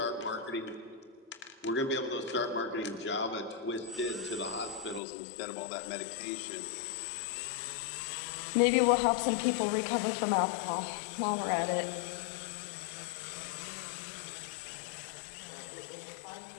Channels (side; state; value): right; drops out; at 5.0 s